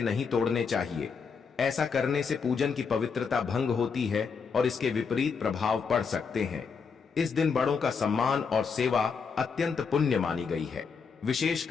नहीं तोड़ने चाहिए। ऐसा करने से पूजन की पवित्रता भंग होती है और इसके विपरीत प्रभाव पड़ सकते हैं। इस दिन बड़ों का सम्मान और सेवा अत्यंत पुण्य मानी गई है।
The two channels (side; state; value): right; quieter; 5.7 dB